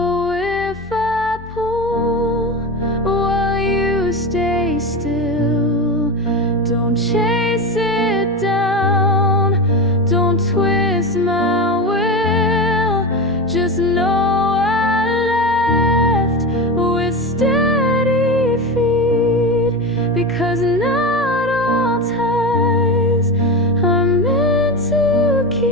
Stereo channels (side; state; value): both; normal; correlation 0.22